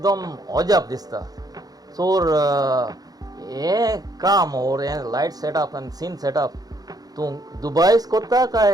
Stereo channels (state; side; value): late; left; 0.19 ms